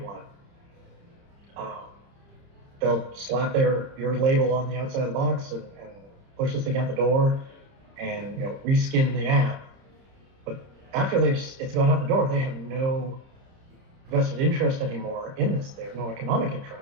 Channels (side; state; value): left; late; 30 ms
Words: one, they'll slap your label on the outside of the box and push this thing out the door, and, you know, reskin the app. But after it's gone out the door, they have no vested interest anymore in this. They have no economic